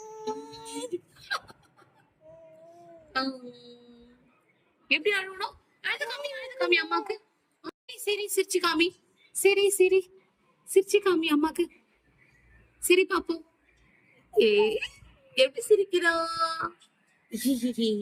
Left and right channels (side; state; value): both; identical; correlation 1.00